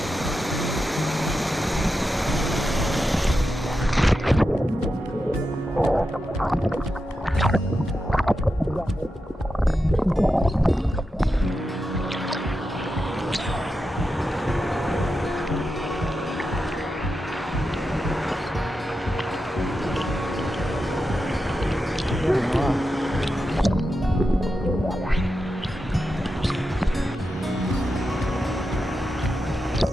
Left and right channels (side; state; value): both; normal; correlation 0.89